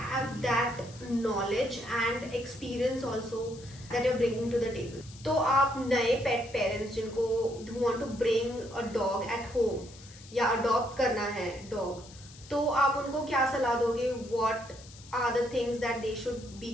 that knowledge and experience also that you're bringing to the table. तो आप नए pet parents जिनको who want to bring a dog at home या adopt करना है dog, तो आप उनको क्या सलाह दोगे? What are the things that they should be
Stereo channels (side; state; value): left; noise; hiss, 20 dB below the sound